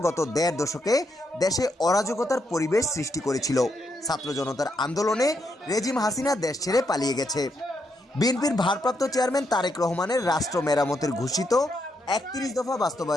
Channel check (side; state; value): both; normal; correlation 0.79